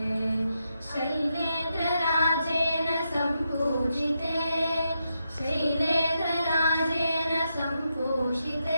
Shailendra ರಾಜೇನ ಸಂಪೂಜಿತೆ, Shailendra ರಾಜೇನ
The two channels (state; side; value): inverted; both; correlation -0.84